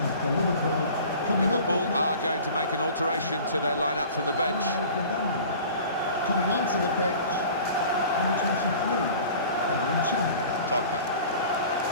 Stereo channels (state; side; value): inverted; both; correlation -0.43